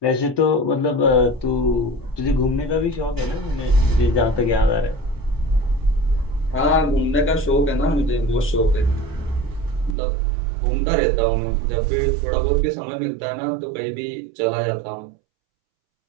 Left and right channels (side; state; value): left; drops out; at 10.0 s